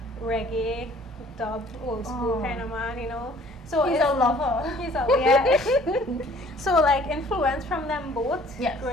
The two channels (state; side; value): normal; both; correlation 0.55